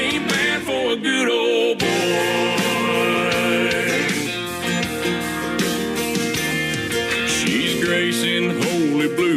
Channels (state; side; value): identical; both; correlation 1.00